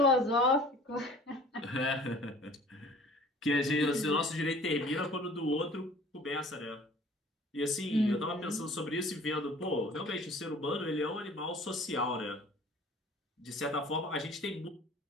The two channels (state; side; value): normal; both; correlation 0.49